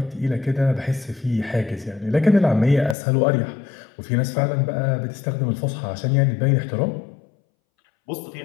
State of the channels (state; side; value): drops out; right; at 3.0 s